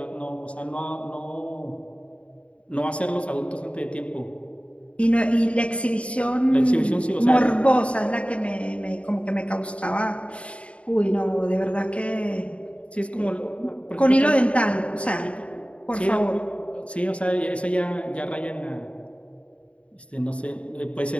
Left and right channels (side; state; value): right; late; 0.062 ms